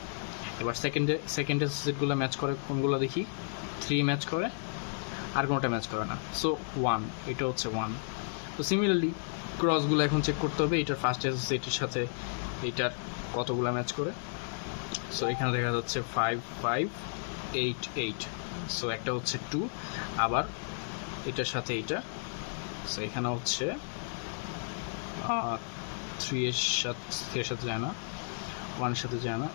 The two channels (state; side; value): silent; right; digital silence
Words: এবার সেকেন্ড অ্যাসোসিয়েটগুলো ম্যাচ করে কোনগুলো দেখি, 3 ম্যাচ করে, আর কোনোটা ম্যাচ করে না। সো 1, এটা হচ্ছে 1। তো সিমিলারলি ক্রসগুলো এখন চেক করতে হবে এটার ফার্স্ট অ্যাসোসিয়েটের সাথে এইটার কতগুলো ম্যাচ করে। সো এখানে দেখা যাচ্ছে 5, 5, 8, 8। সো একটা হচ্ছে 2, আবার এটার সাথে এইটা। সো এখানে হচ্ছে 3-এর সাথে যায় না, 1-এর সাথে যায় না,